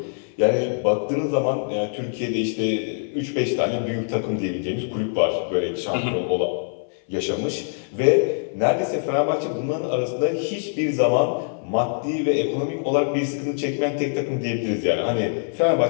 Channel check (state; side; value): silent; right; 63 dB below the other